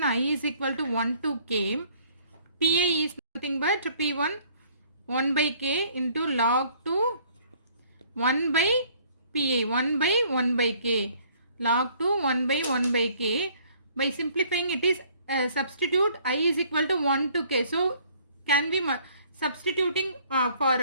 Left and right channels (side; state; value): both; inverted; correlation -0.59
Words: I is equal to 1 to k. Pi is nothing but P1 1 by k into log 2 1 by pi, 1 by 1 by k, log 2 1 by 1 by k. By simplifying, it is substitute I is equal to 1 to k. So can we substituting